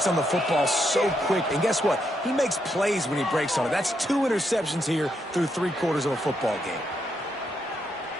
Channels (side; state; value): both; normal; correlation 0.79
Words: on the football so quick. And guess what? He makes plays when he breaks on it. That's 2 interceptions here through 3/4 of a football game.